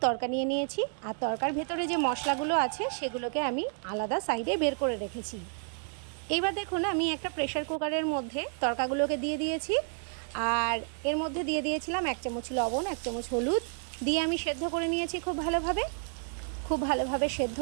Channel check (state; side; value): silent; left; 55 dB below the other